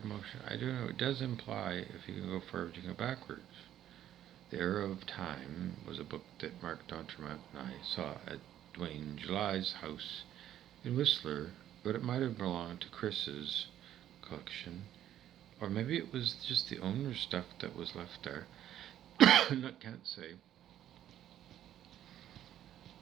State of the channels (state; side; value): quieter; left; 11.5 dB